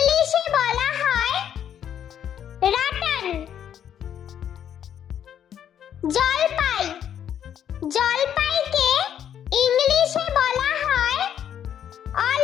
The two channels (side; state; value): right; quieter; 9.5 dB